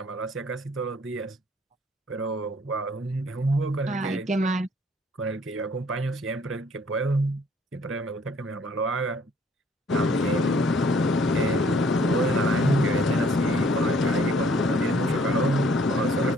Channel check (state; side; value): normal; both; correlation 0.61